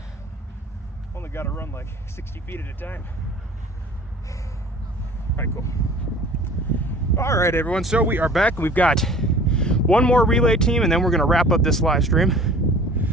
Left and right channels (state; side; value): normal; both; correlation 0.46